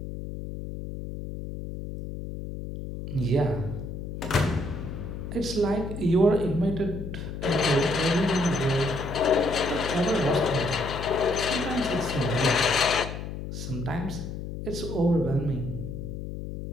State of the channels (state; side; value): noise; left; hum, 7 dB below the sound